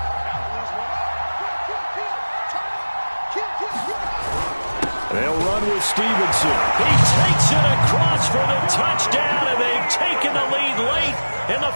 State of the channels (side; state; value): both; inverted; correlation -1.00